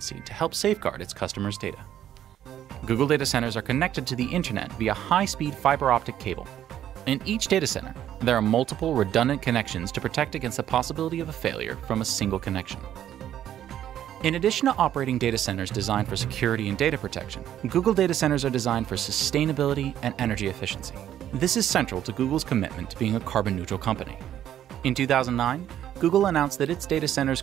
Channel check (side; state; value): left; quieter; 11.1 dB